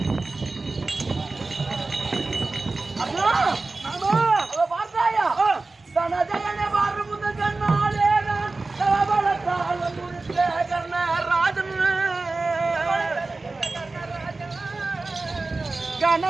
பார்த்தாயா தனஜயனை பாரு முத கண்ணாலே தவளத்தால் முடித்த கர்ணராஜன்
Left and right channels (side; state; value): left; quieter; 3.5 dB